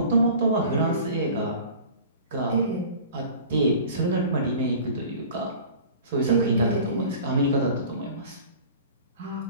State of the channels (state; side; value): inverted; both; correlation -0.42